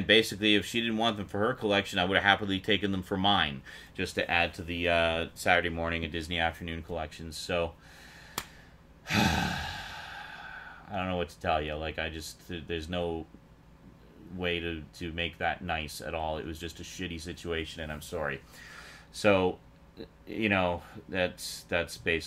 basically, if she didn't want them for her collection, I would have happily taken them for mine, just to add to the Saturday morning and Disney Afternoon collections. So I don't know what to tell you. There's no way to make that nice at all. It was just a shitty situation, and I'm sorry. So, that's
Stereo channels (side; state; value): both; identical; correlation 1.00